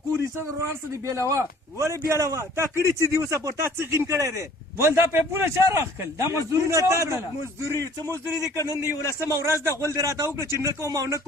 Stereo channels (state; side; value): normal; both; correlation 0.53